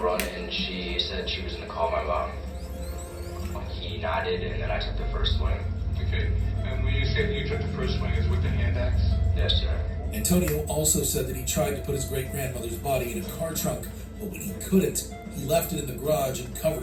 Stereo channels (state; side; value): identical; both; correlation 1.00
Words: run and she said she was going to call my mom. He nodded and then I took the first swing. Okay, and when you say you took the first swing, is with the hand axe? Yes, sir. Antonio also said that he tried to put his great-grandmother's body in a car trunk, but when he couldn't, he left it in the garage and covered